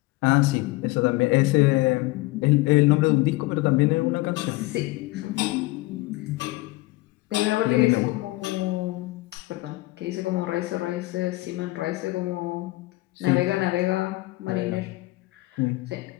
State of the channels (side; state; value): right; quieter; 20.6 dB